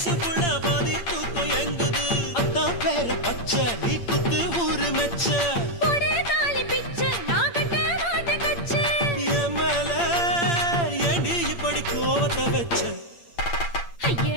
புள்ள பாதி தூக்கம் எங்குது. பத்த வச்ச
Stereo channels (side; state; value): right; late; 8.7 ms